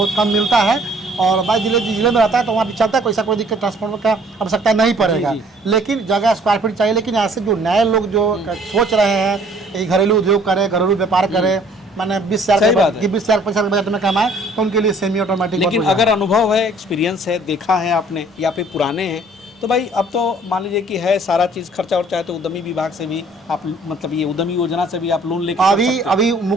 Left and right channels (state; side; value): normal; both; correlation 0.57